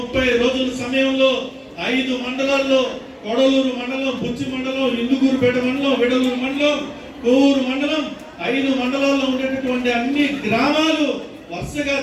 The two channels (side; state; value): both; identical; correlation 1.00